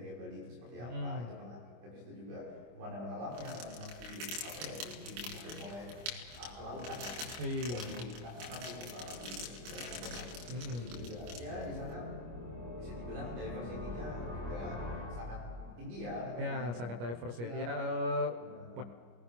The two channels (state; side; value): late; left; 25 ms